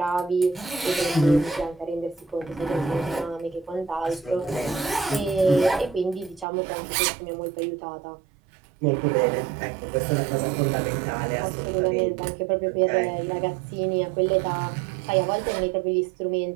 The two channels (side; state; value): left; drops out; at 6.5 s